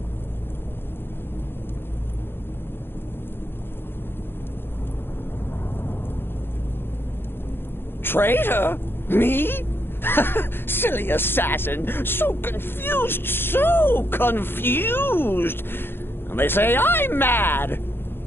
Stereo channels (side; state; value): right; late; 0.10 ms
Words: Traitor? Me? Silly assassin. So confused, so confused. And they say I'm mad.